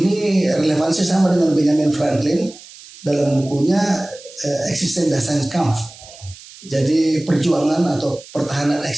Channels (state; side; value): noise; right; hiss, 19 dB below the sound